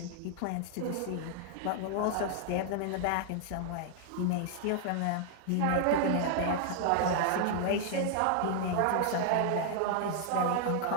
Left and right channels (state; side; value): different; both; correlation 0.00